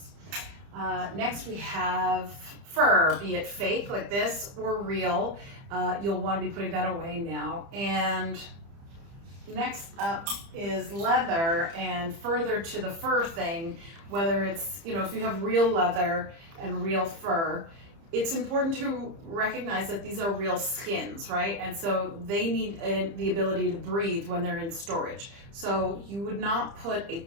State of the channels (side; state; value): left; late; 30 ms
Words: Next we have fur, be it fake like this or real. You'll want to be putting that away now. And next up is leather, and further to the fur thing, whether it's, if you have real leather and real fur, it's important to recognize that these are real skins, right? And so they need the ability to breathe when they're in storage. So you would not put a